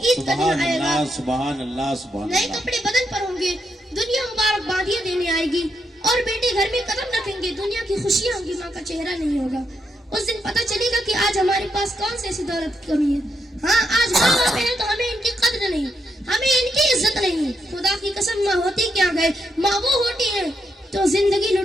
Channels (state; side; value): normal; both; correlation 0.80